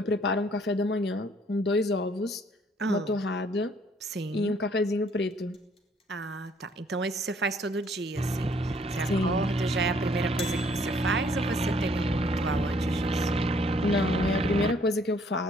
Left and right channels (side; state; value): both; normal; correlation 0.63